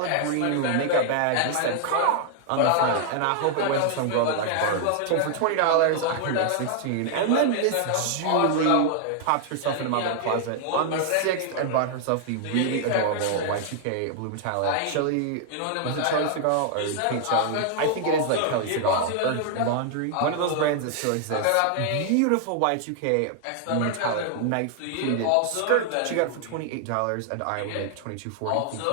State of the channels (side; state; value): both; different; correlation 0.00